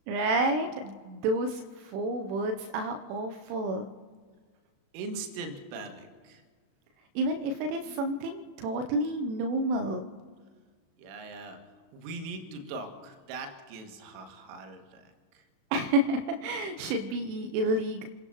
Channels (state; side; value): late; left; 36 ms